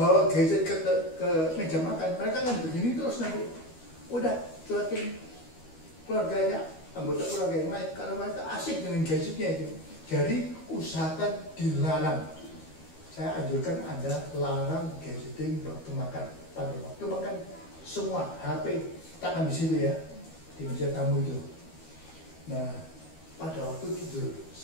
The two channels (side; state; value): right; late; 12 ms